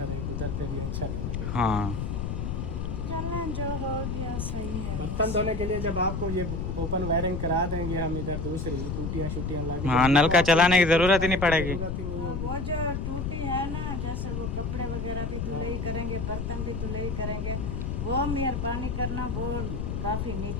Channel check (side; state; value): left; noise; rumble, 2 dB below the sound